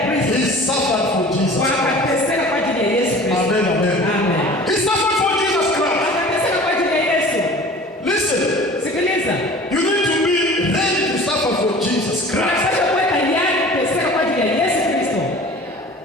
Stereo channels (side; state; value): both; normal; correlation 0.43